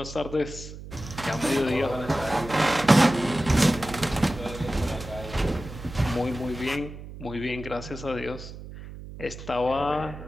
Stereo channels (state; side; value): noise; right; hum, 13 dB below the sound